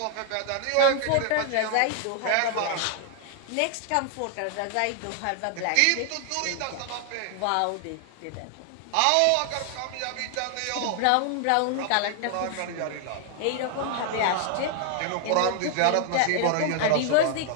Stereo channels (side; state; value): both; different; correlation 0.00